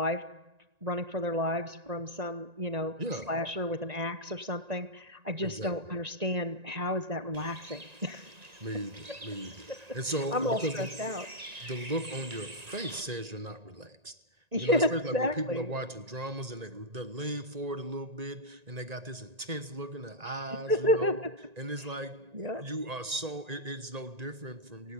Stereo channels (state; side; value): late; left; 1.9 ms